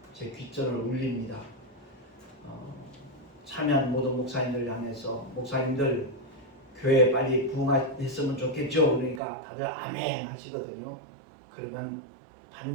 제 귓전을 울립니다. 참여한 모든 목사님들 향해서 목사님들 교회 빨리 부흥했으면 좋겠죠. 그러니까 다들 아멘 하시거든요. 그러면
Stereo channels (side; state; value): left; drops out; at 9.2 s